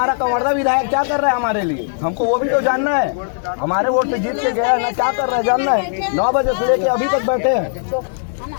कंवर्धा विधायक क्या कर रहा है हमारे लिए, हमको वो भी तो जानना है। हमारे वोट से जीत के गया ना, क्या कर रहा है जानना है। 9 बजे से लेके अभी तक बैठे हैं।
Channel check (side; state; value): right; silent; digital silence